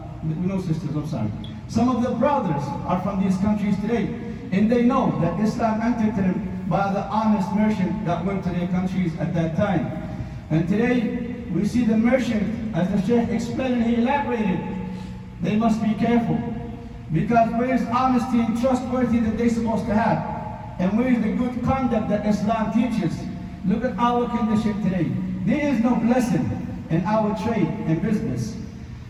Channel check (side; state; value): both; identical; correlation 1.00